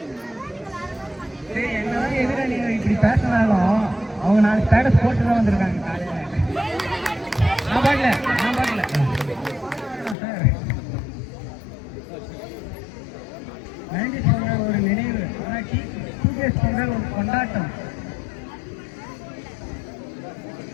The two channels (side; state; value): right; drops out; at 10.2 s